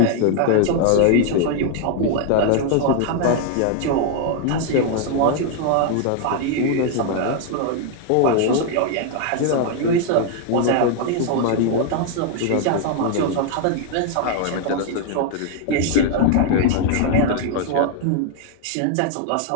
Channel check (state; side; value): different; both; correlation 0.00